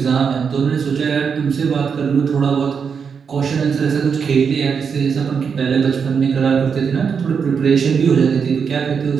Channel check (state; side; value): quieter; left; 6.3 dB